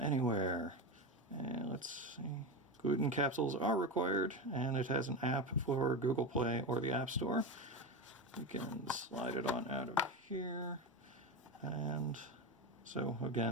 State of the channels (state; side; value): normal; both; correlation 0.18